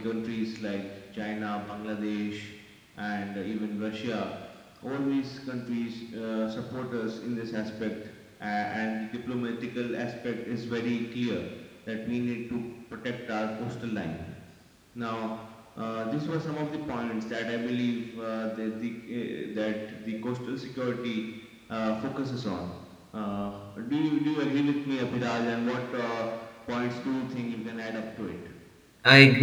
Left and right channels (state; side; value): identical; both; correlation 1.00